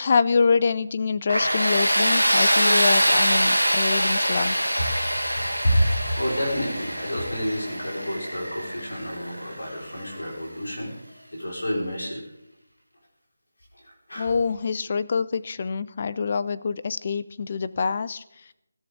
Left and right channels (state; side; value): inverted; both; correlation -0.93